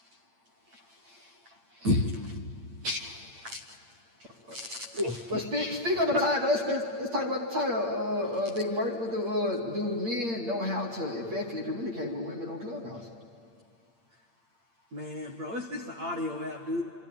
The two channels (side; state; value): left; late; 8.7 ms